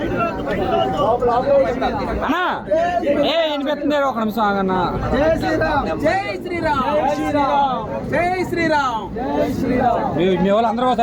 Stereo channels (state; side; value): identical; both; correlation 1.00